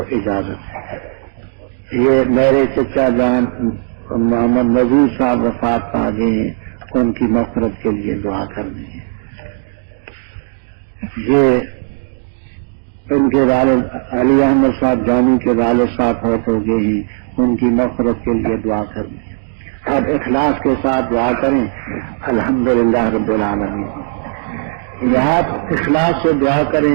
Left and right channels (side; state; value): left; silent; 69 dB below the other